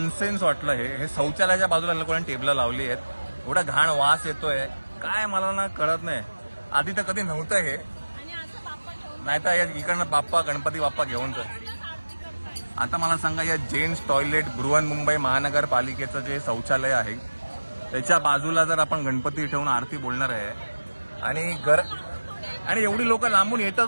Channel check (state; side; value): inverted; both; correlation -1.00